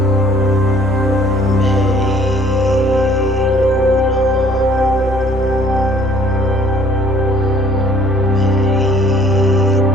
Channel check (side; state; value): both; normal; correlation 0.57